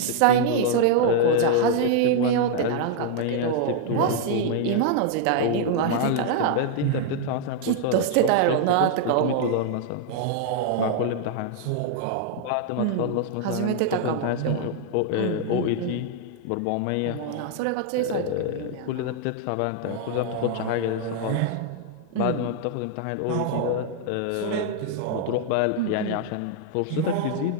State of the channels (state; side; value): different; both; correlation 0.00